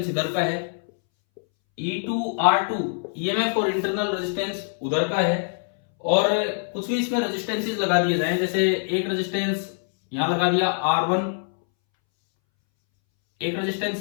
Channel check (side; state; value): right; silent; 62 dB below the other